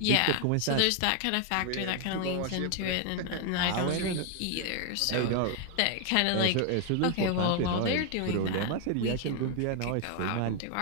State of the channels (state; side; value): different; both; correlation 0.00